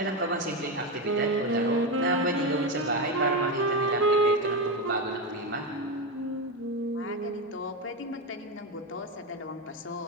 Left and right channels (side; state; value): both; normal; correlation 0.13